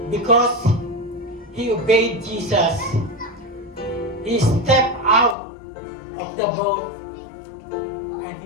because he obeyed Jesus. He stepped out of the boat and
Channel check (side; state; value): right; drops out; at 5.4 s